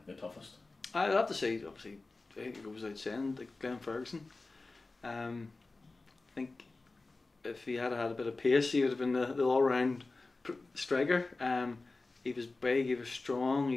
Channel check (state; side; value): quieter; right; 3.5 dB